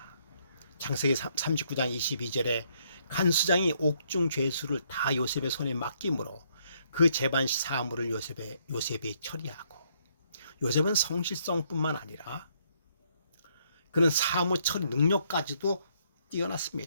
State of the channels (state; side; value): inverted; both; correlation -0.70